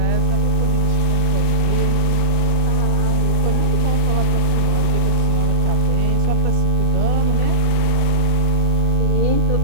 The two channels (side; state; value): left; late; 2.6 ms